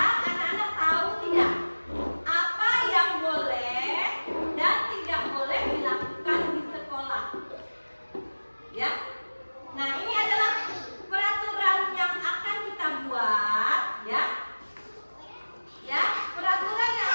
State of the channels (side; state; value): both; inverted; correlation -1.00